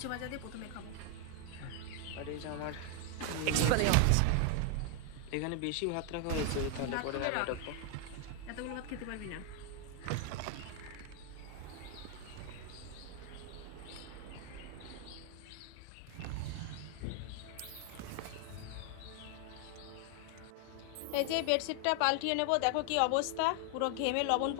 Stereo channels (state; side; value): different; both; correlation 0.00